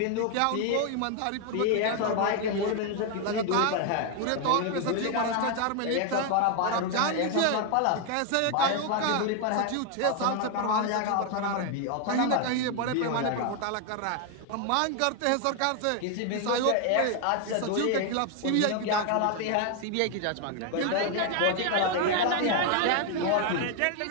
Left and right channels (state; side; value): different; both; correlation 0.01